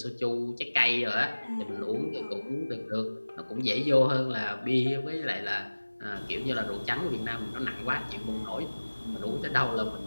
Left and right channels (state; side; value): inverted; both; correlation -1.00